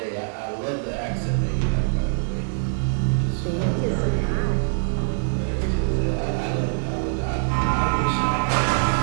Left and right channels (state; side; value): silent; left; digital silence